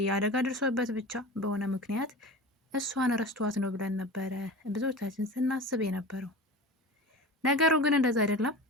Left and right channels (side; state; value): both; normal; correlation 0.33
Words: አደጋ ደርሶበት ብቻ በሆነ ምክንያት እሷን ረስቷት ነው ብለን ነበረ ብዙዎቻችን ስናስብ የነበረው። ነገሩ ግን እንደዛ አይደለም።